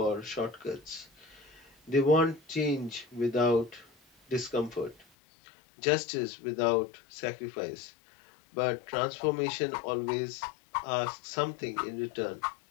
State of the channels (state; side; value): drops out; right; at 5.1 s